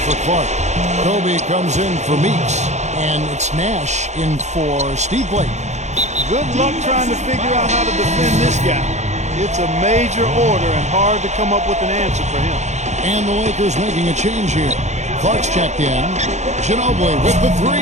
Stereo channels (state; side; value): late; left; 0.33 ms